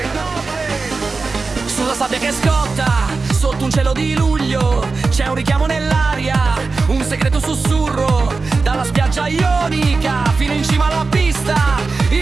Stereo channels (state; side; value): quieter; left; 4.1 dB